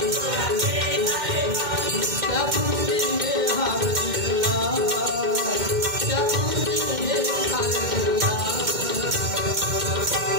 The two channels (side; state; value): left; late; 2.1 ms